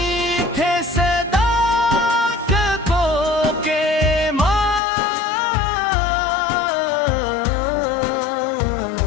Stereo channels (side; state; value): right; drops out; at 4.8 s